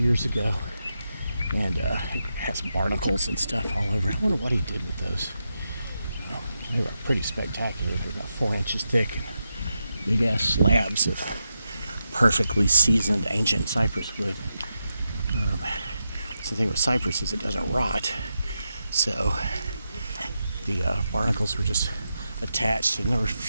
ago, and it has barnacles and stuff all over. I wonder what he did with those. They were pretty spectacular. They're about 4 inches thick and big ass slabs of perfectly seasoned ancient cypress wood. So the thing with cypress is it doesn't rot, so the barnacles were just attached, and there were a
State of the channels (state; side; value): inverted; both; correlation -0.87